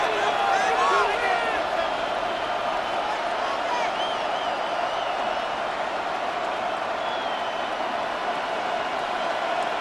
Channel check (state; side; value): identical; both; correlation 1.00